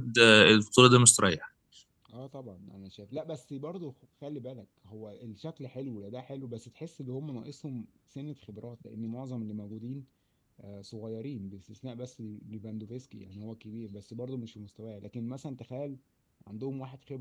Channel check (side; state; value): both; identical; correlation 1.00